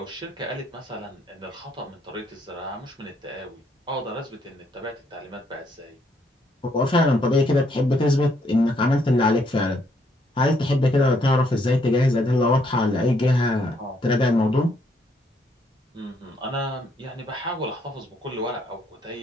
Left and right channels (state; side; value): normal; both; correlation 0.70